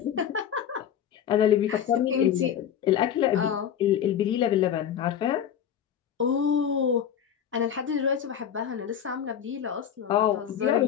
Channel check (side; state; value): right; quieter; 9.0 dB